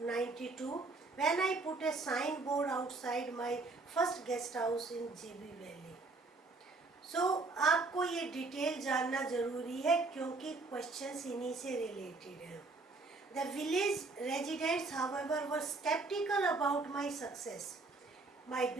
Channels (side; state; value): left; quieter; 3.5 dB